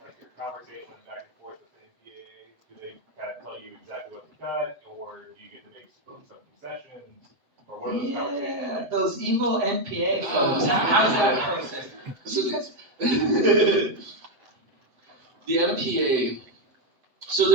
like your conversation back and forth with the NPAA. Do they kind of tell you exactly what to cut, or do you get to make some concessions, or what are those conversations yeah, like? those evil NPA folks. How's that process? So the MPA.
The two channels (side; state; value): left; late; 7.7 ms